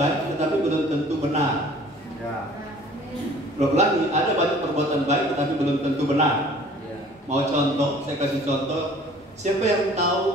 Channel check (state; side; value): normal; both; correlation 0.51